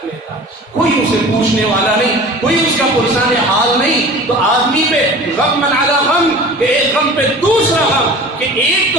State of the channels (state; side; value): normal; both; correlation 0.40